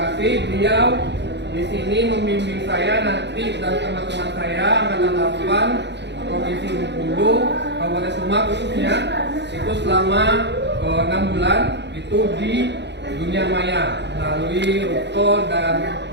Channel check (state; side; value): late; left; 0.51 ms